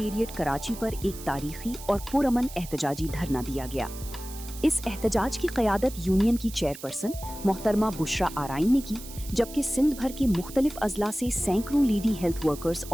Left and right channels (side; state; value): right; noise; hiss, 14 dB below the sound